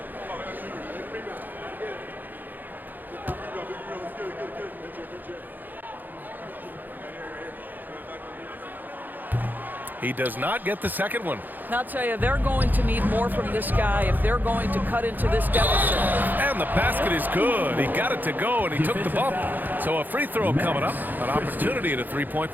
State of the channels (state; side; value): late; left; 0.086 ms